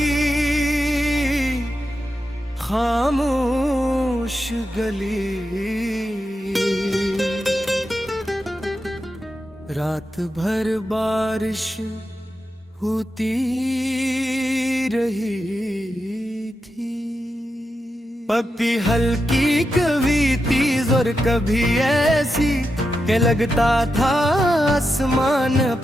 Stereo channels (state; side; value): normal; both; correlation 0.88